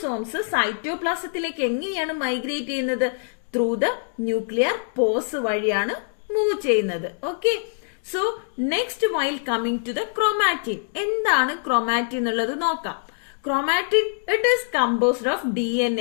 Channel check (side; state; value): right; silent; 63 dB below the other